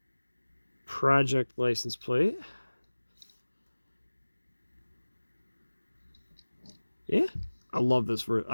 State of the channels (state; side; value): inverted; both; correlation -1.00